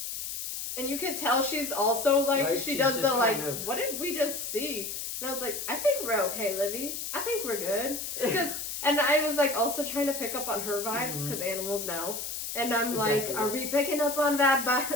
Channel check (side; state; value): left; noise; hiss, 5 dB below the sound